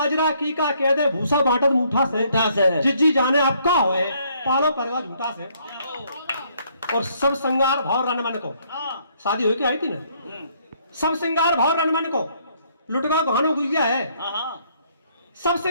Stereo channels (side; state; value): both; inverted; correlation -0.67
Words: की का कह दे भूसा बांटत मुठा से। जिज्जी जाने आपका होए पालो परवा झूठा से। और सब श्रृंगार भाव रणमन को शादी हुई के आई थी ना। सब श्रृंगार भाव रणमन को लुटगा गहनो गुरिया है। सब